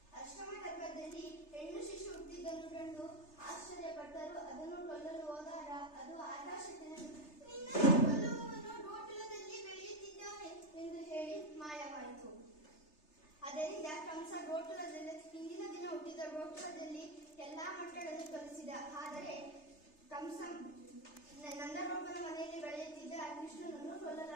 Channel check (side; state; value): right; late; 3.3 ms